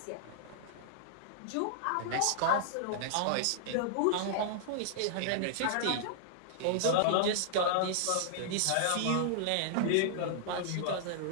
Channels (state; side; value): different; both; correlation -0.01